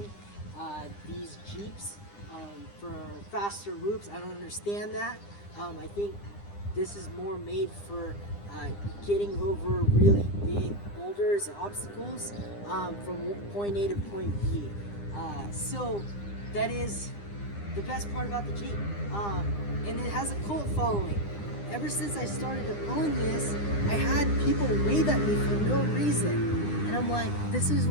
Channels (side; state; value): right; late; 9.9 ms